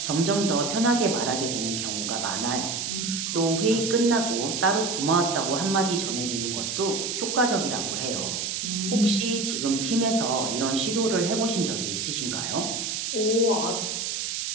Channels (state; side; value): noise; right; hiss, 3 dB below the sound